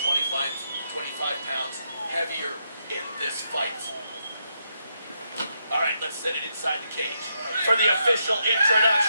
25 pounds heavier in this fight. All right, let's set it inside the cage. For the official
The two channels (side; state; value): both; inverted; correlation -0.80